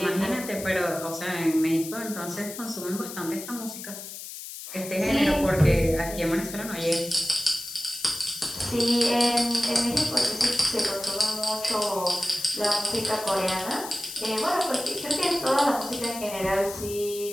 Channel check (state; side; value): noise; left; hiss, 10 dB below the sound